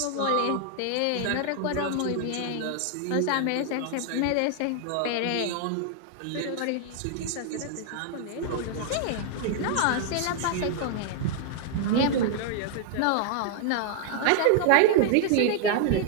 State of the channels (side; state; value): both; different; correlation 0.00